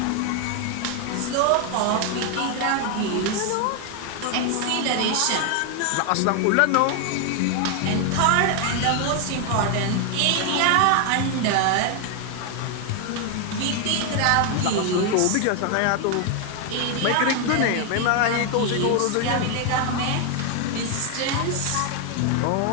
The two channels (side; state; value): both; different; correlation 0.01